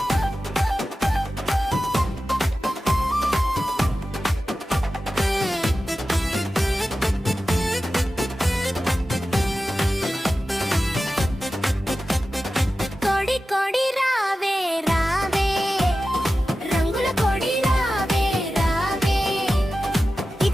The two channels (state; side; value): normal; both; correlation 0.94